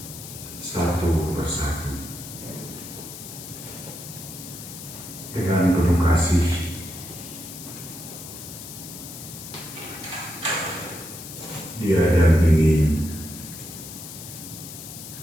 satu persatu dengan penuh kasih. Dia dampingi,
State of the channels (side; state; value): left; noise; hiss, 12 dB below the sound